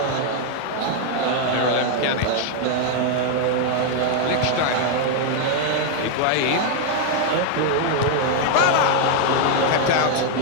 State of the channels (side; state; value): both; different; correlation 0.00